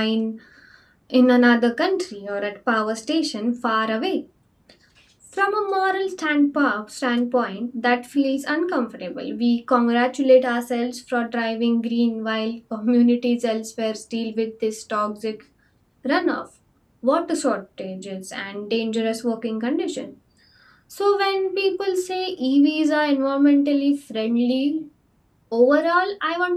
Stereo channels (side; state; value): both; identical; correlation 1.00